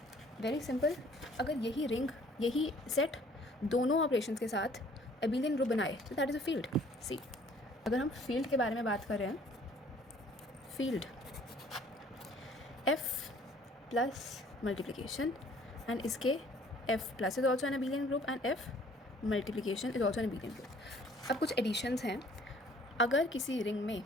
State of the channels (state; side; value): normal; both; correlation 0.56